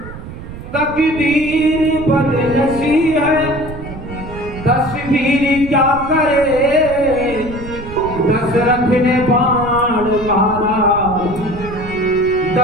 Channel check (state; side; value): noise; right; rumble, 12 dB below the sound